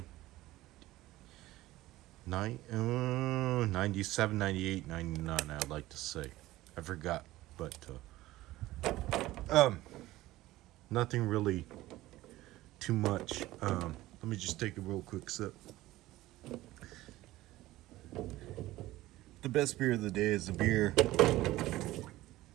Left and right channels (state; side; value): quieter; left; 16.9 dB